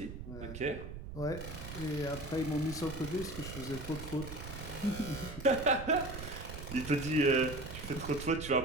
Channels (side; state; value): right; noise; rumble, 10 dB below the sound